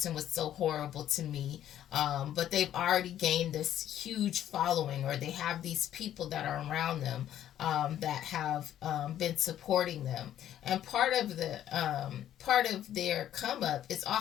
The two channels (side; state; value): right; quieter; 11.4 dB